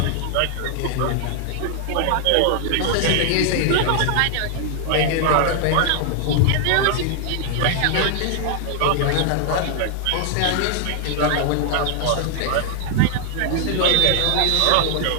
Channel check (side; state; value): both; different; correlation 0.00